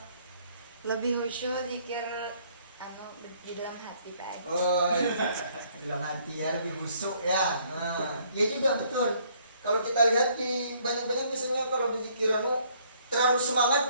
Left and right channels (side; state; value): both; inverted; correlation -0.64